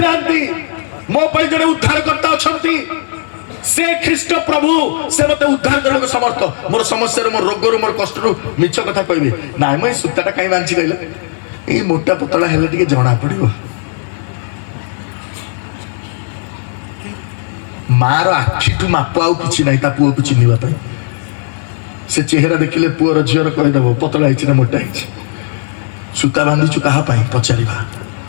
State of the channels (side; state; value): right; silent; digital silence